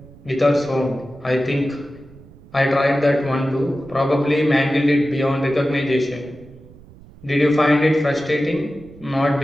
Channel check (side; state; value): right; noise; rumble, 22 dB below the sound